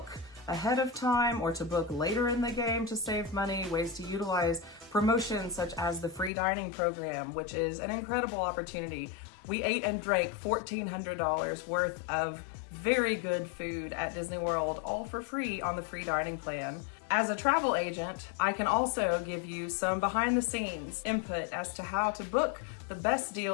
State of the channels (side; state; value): right; drops out; at 6.3 s